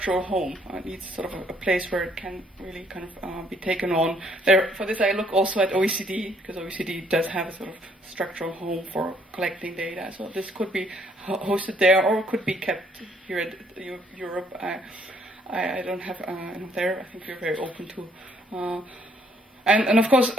home. It needs sort of a place where it can really kind of be taken on. For this, I look also at OECD, because OECD does have a sort of structural home for collecting data. So this could be hosted there, or could be kept here at Europe. I don't have there. I think we're very open to. And of course,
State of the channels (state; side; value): normal; both; correlation 0.65